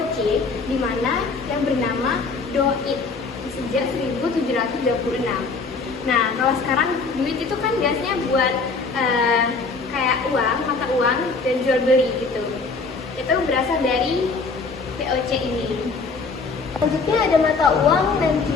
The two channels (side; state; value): right; quieter; 4.3 dB